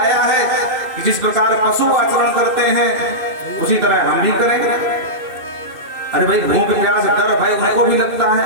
है कि जिस प्रकार पशु आचरण करते हैं उसी तरह हम भी करेंगे? अरे भाई, भूख प्यास डर भय उनको भी लगता है।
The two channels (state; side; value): late; left; 2.6 ms